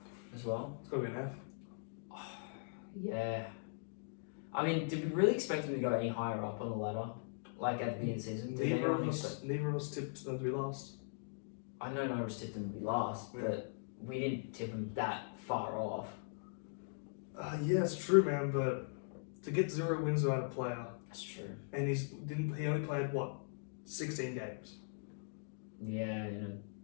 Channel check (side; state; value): right; silent; digital silence